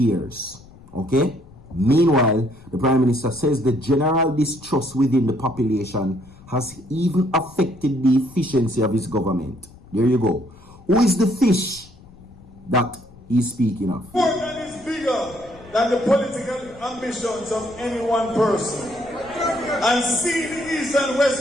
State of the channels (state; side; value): noise; left; rumble, 22 dB below the sound